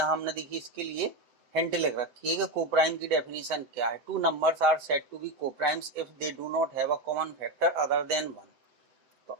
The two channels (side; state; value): left; late; 7.8 ms